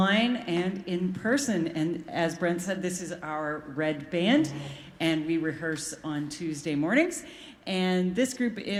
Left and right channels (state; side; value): identical; both; correlation 1.00